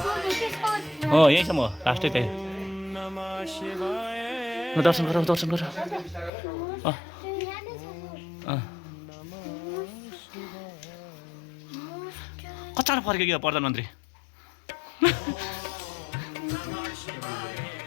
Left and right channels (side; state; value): right; drops out; at 6.3 s